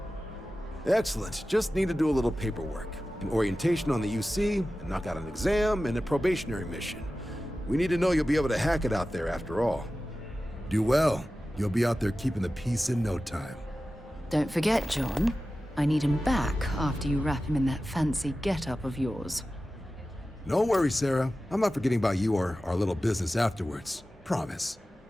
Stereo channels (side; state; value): both; normal; correlation 0.95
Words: Excellent. Just need to do a little paperwork. An orientation on the UC, and knock out an exam, and a probationary mission. We need to know you'll be able to hack it out there after all. Do well. You'll be out there keeping the peace in no time. Don't forget, John. I need him back after you wrap him in that fancy get-up of yours. No worries, Sarah. I'm not forgetting about you or our little business afterwards. Promise.